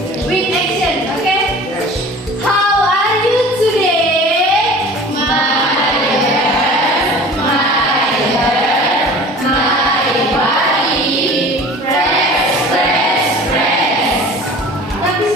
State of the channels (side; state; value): both; normal; correlation 0.42